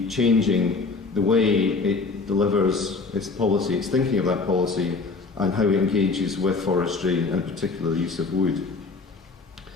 changing the way it delivers its policy, its thinking of that policy, and how it engages with forestry, and in particular the use of wood.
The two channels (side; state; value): right; quieter; 4.1 dB